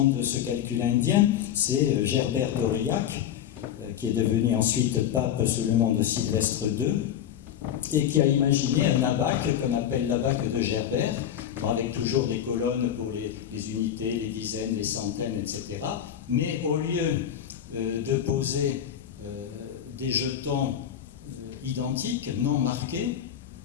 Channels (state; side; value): quieter; right; 9.9 dB